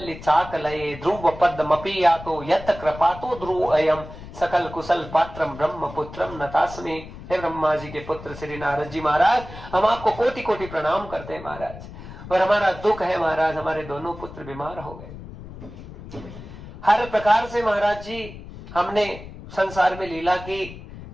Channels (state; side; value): noise; left; rumble, 14 dB below the sound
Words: चाकलये ध्रुव पद्मपि यातो यत कृपातो ध्रुव अयम सकल कुशल पात्रम ब्रह्म पुत्रम नतास्मि। हे ब्रह्मा जी के पुत्र श्री नारद जी महाराज, हम आपको कोटि कोटि प्रणाम करते हैं महाराज। और हमारा दुख है महाराज, हमारे दोनों पुत्र बीमार हो गए। हर प्रकार से महाराज जी हमने संसार में लीला की,